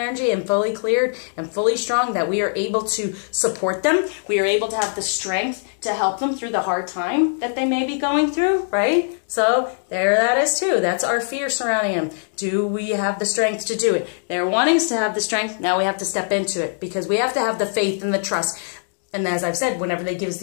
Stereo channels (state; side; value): silent; right; digital silence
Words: and fully cleared and fully strong, that we are able to support them. We are able to have the strength to help them through the hard time that they may be going through, right? So there that is too. That's our fear surrounding them. Do we have the strength to do it? They're wanting us to have the strength. Now we have to step into it, because we have to have the faith and the trust. And as I've said, whenever they give us